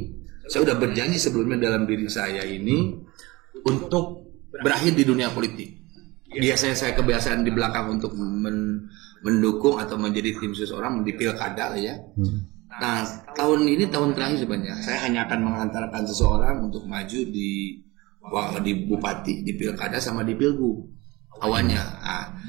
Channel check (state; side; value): quieter; left; 22.1 dB